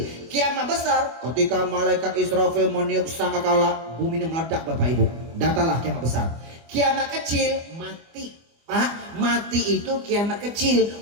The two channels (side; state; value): left; late; 24 ms